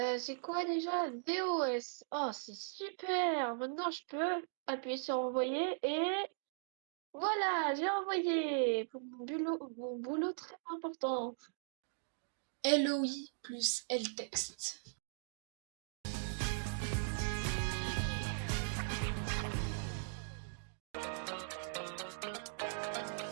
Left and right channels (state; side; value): silent; left; digital silence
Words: C'est quoi déjà? DOS. Oh, c'est super. Maintenant, je peux appuyer sur envoyer et voilà, j'ai envoyé pour mon boulot très important. LOI plus LText.